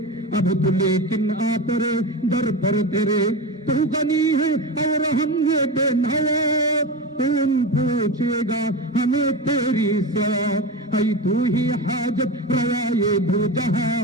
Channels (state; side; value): normal; both; correlation 0.23